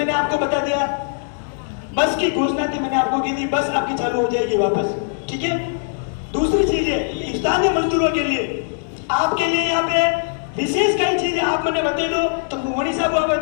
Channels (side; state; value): right; silent; digital silence